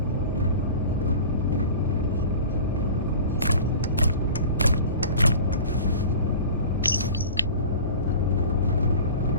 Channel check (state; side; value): inverted; both; correlation -0.38